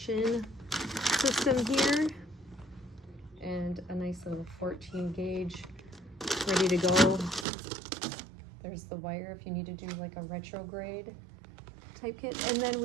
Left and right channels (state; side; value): drops out; left; at 7.5 s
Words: system here, and a nice little 14 gauge ready to go. There's the wire if you need to do like a retrograde type kit. And then